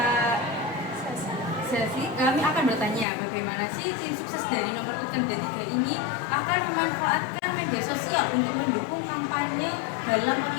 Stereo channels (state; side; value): drops out; right; at 3.1 s